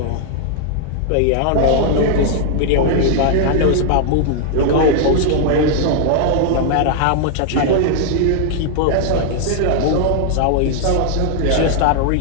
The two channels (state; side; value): different; both; correlation -0.01